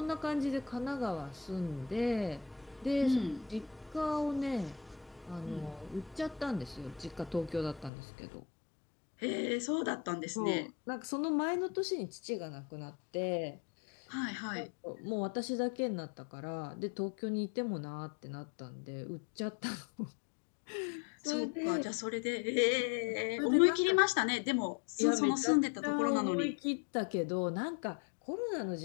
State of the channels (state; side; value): drops out; right; at 7.9 s